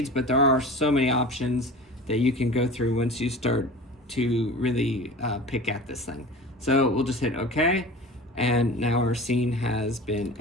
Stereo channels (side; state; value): both; normal; correlation 0.37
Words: but there are so many options that you can go through once you start to really pick at this thing. So we'll just hit OK, and now our scene has been